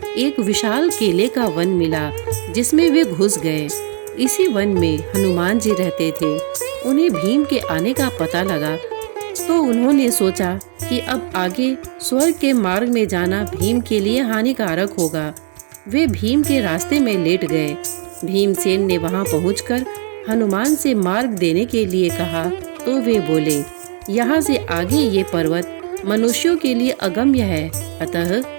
एक विशाल केले का वन मिला, जिसमें वे घुस गए। इसी वन में हनुमान जी रहते थे। उन्हें भीम के आने का पता लगा, तो उन्होंने सोचा कि अब आगे स्वर्ग के मार्ग में जाना भीम के लिए हानिकारक होगा। वे भीम के रास्ते में लेट गए। भीमसेन ने वहां पहुंचकर हनुमान से मार्ग देने के लिए कहा, तो वे बोले, यहाँ से आगे ये पर्वत मनुष्यों के लिए अगम्य है, अतः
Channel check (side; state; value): left; silent; 57 dB below the other